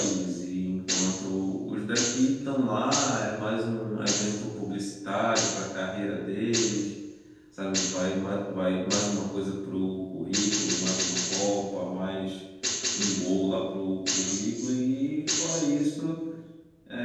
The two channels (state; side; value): identical; both; correlation 1.00